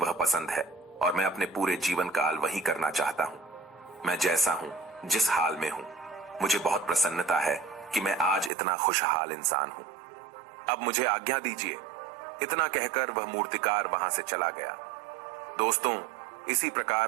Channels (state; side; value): drops out; left; at 8.5 s